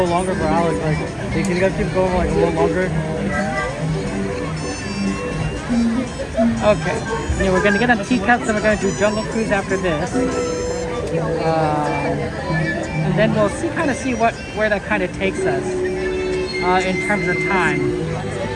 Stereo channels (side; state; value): both; identical; correlation 1.00